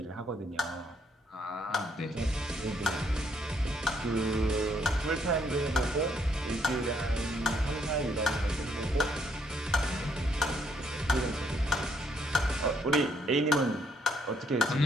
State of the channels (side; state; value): both; normal; correlation 0.70